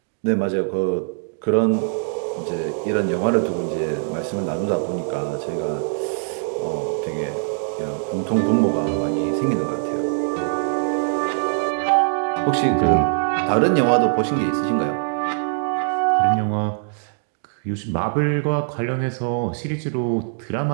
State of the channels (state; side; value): silent; left; digital silence